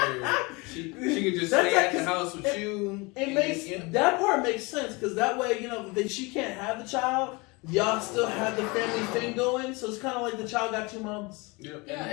She could just That's stay at the like- house with you. It and makes you know. that part makes sense because that way that she can't have the child. Y'all still have the family thing going, so it's kind of like the child got 2 moms. Yep. Yeah.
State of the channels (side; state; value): right; quieter; 26.4 dB